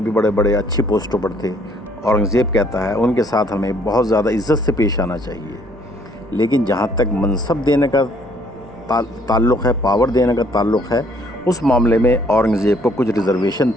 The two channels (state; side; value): normal; both; correlation 0.64